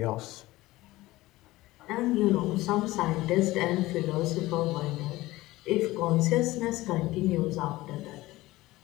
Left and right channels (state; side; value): quieter; right; 18.3 dB